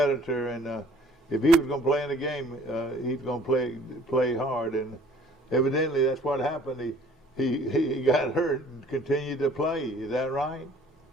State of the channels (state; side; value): normal; both; correlation 0.54